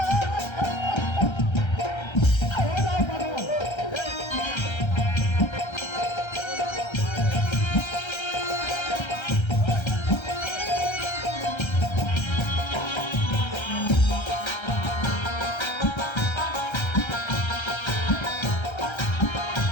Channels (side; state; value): right; late; 1.3 ms